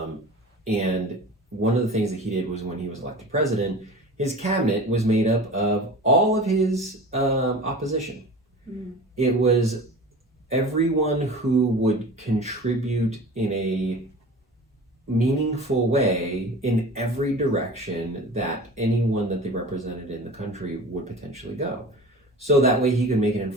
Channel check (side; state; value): both; normal; correlation 0.37